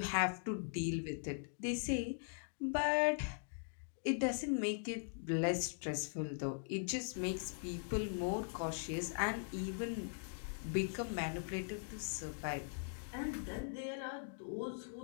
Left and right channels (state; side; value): silent; right; digital silence